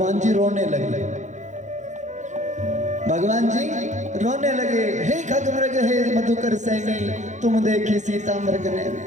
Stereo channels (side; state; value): left; late; 0.35 ms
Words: जी रोने लगे। भगवान जी रोने लगे, हे खगमृग हे मधुकर सैनी, तुम देखी सीता मृग ने।